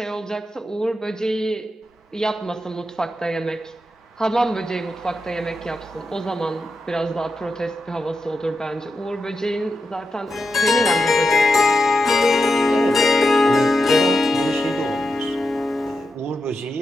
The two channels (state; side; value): normal; both; correlation 0.87